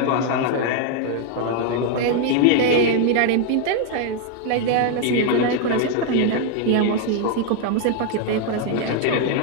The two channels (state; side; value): different; both; correlation 0.00